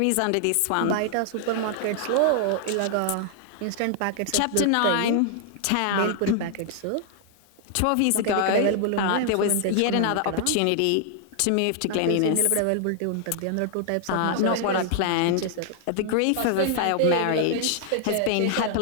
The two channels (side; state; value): both; different; correlation 0.00